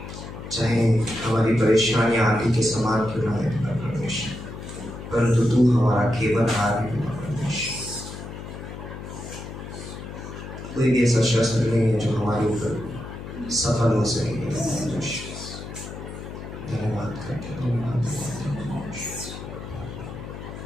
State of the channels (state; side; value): noise; left; hum, 10 dB below the sound